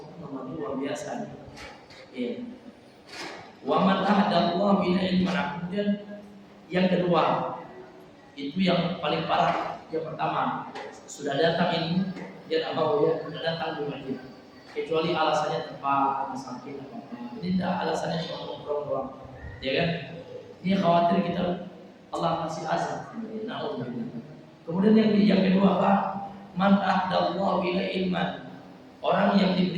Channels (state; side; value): identical; both; correlation 1.00